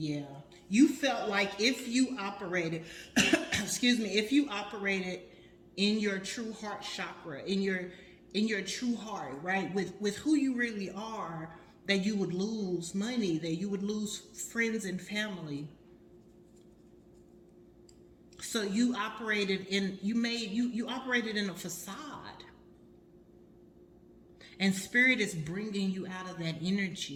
You felt like if you operated, if you operated in your true heart chakra, in your true heart, right? With who you really are, that you would lose money, that you would lose friends and family. So you operated in, you operated in a facade. And spirit is bringing you out of that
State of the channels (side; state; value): both; identical; correlation 1.00